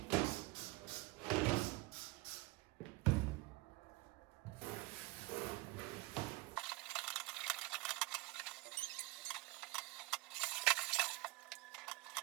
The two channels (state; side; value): quieter; left; 21.5 dB